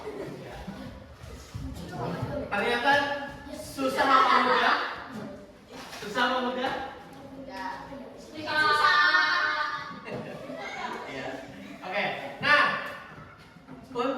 Ternyata susah apa mudah? Susah apa mudah? Iya. Oke. Nah,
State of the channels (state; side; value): identical; both; correlation 1.00